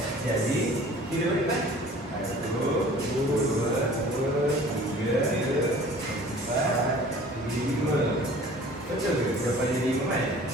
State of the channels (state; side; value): normal; both; correlation 0.47